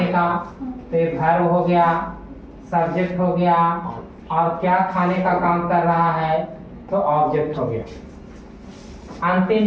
का, तो ये वर्ब हो गया, सब्जेक्ट हो गया, और क्या खाने का काम कर रहा है तो ऑब्जेक्ट हो गया। अंतिम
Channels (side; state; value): both; identical; correlation 1.00